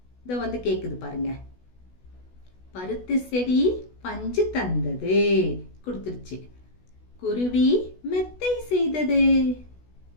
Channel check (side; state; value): right; late; 16 ms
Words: இத வந்து கேக்குது பாருங்க. பருத்தி செடி பஞ்சு தந்தது, கொடுத்துருச்சு. குருவி மெத்தை செய்தது?